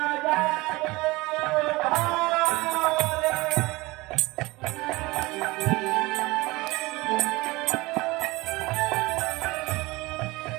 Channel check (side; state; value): left; quieter; 21.9 dB